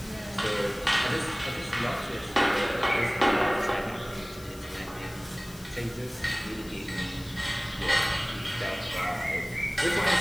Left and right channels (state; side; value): noise; left; hiss, 20 dB below the sound